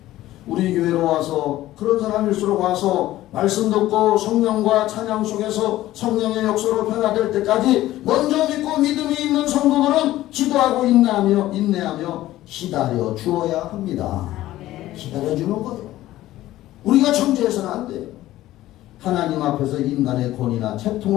우리 교회로 와서 그런 사람일수록 와서 말씀 듣고 성령과 찬양 속에서 성령의 역사로 변화될 때까지 먼저 믿고 믿음이 있는 성도들은 기도하고 인내하며 기다려 주어야 합니다. 기다려주는 거예요. 우리가 정죄해서는 안 돼요. 하나님 앞에서 인간의 권위나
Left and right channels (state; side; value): quieter; right; 15.2 dB